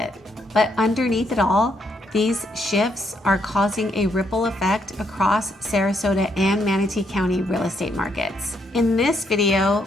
But underneath it all, these shifts are causing a ripple effect across Sarasota and Manatee County real estate markets. In this video,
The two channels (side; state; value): both; normal; correlation 0.74